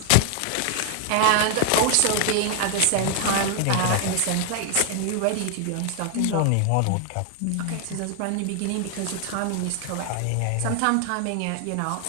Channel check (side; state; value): both; different; correlation 0.00